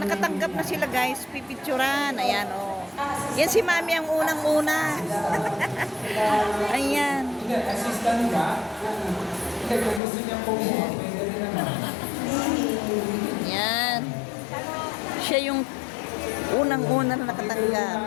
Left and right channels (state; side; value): drops out; right; at 10.0 s